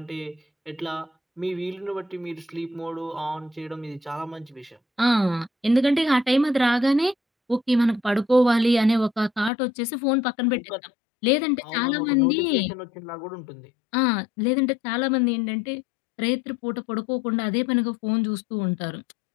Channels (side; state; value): right; drops out; at 9.5 s